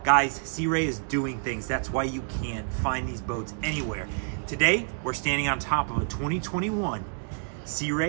Guys, Sea Ray is doing things. That's why you can't find these boats anywhere. Today, we're standing on top of a 2021 Sea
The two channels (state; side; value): silent; left; digital silence